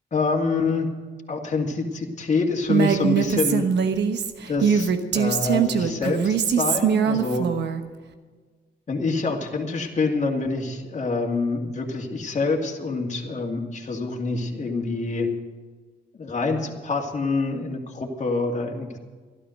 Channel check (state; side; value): normal; both; correlation 0.54